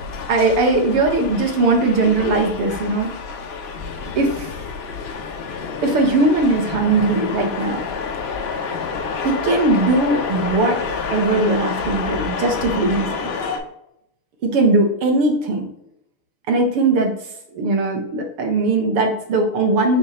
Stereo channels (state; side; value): late; left; 6.9 ms